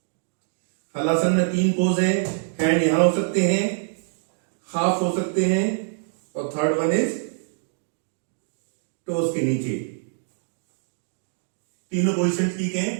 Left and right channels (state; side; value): silent; left; digital silence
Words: हलासन में 3 पोज है। हैंड यहां हो सकते हैं, हाफ हो सकते हैं, और थर्ड वन इज टोज के नीचे। तीनों पोजीशन ठीक हैं,